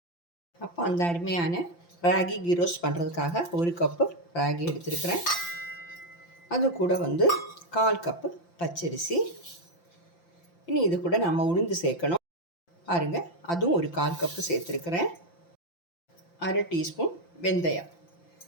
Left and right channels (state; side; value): late; right; 5.8 ms